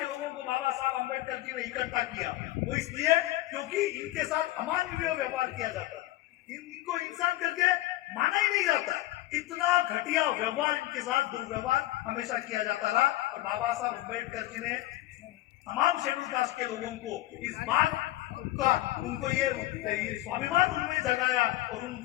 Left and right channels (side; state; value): right; quieter; 16.6 dB